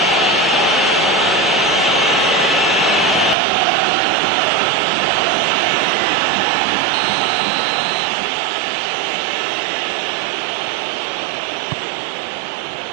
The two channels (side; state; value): left; drops out; at 3.4 s